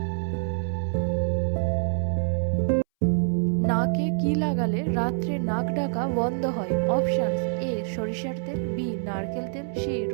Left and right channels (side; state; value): left; silent; 61 dB below the other